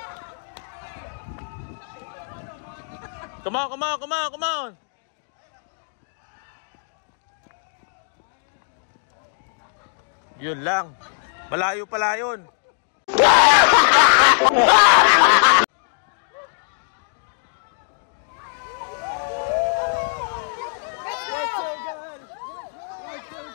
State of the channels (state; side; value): silent; right; digital silence